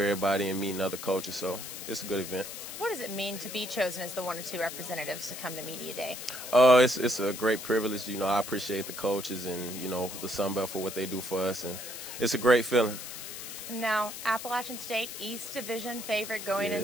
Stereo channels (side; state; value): left; noise; hiss, 9 dB below the sound